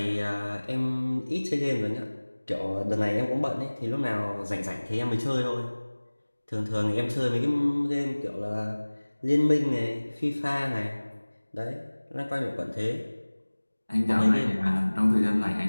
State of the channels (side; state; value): both; inverted; correlation -1.00